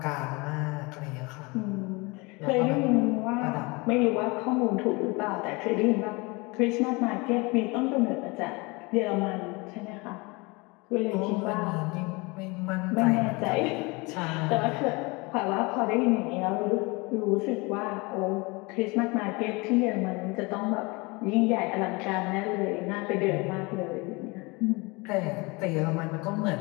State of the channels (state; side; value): quieter; right; 26.4 dB